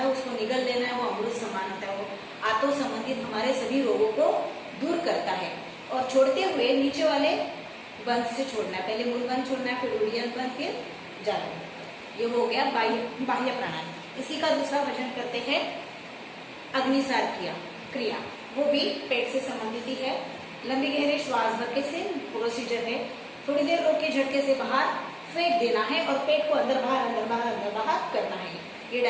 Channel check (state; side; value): identical; both; correlation 1.00